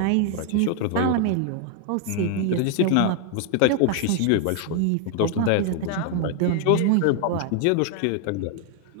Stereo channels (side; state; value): both; different; correlation 0.00